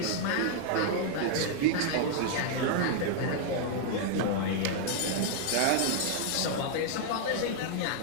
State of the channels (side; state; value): both; different; correlation 0.00